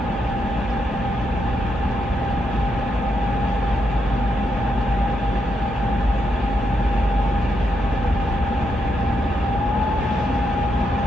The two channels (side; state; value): both; normal; correlation 0.81